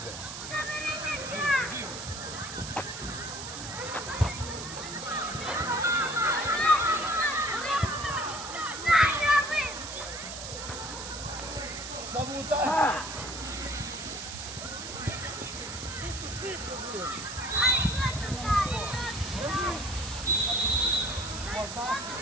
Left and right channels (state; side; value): noise; right; hiss, 8 dB below the sound